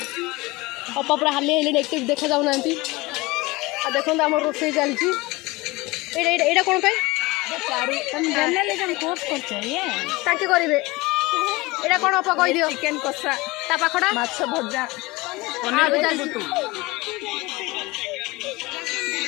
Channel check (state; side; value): quieter; right; 22.4 dB